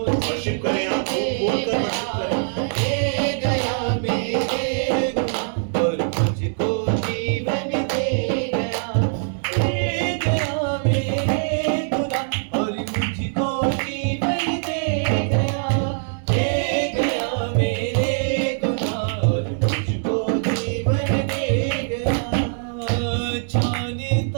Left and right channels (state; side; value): silent; left; digital silence